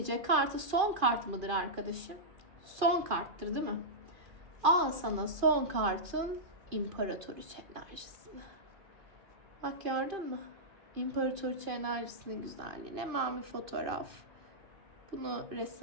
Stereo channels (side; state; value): left; late; 2.4 ms